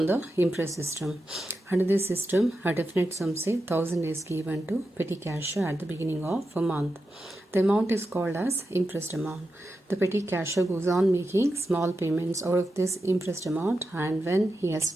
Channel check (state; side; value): normal; both; correlation 0.89